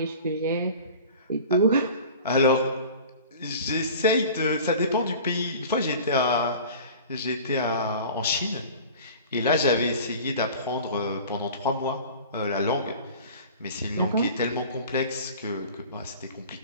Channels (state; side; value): inverted; both; correlation -0.41